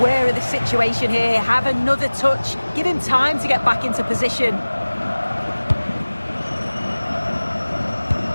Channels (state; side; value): inverted; both; correlation -1.00